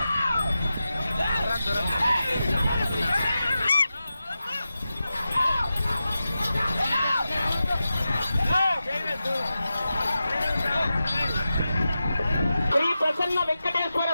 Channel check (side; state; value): both; inverted; correlation -0.92